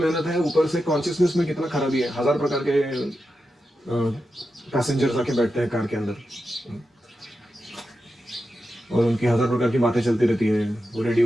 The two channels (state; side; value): normal; both; correlation 0.89